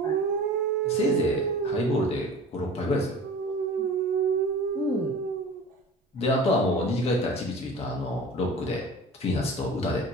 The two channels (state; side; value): normal; both; correlation 0.40